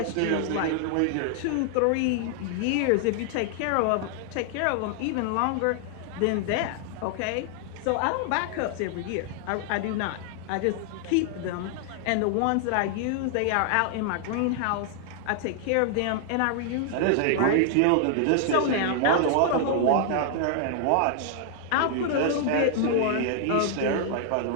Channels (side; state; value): both; different; correlation 0.00